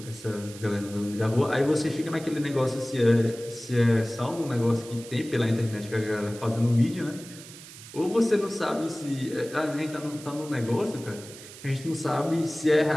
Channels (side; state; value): right; noise; hiss, 16 dB below the sound